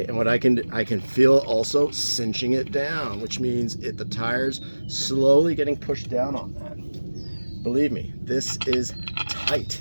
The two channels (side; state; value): both; inverted; correlation -1.00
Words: and what I can feel also cinching it down, which means the tire's slowly getting pushed down on that. Believe me, this is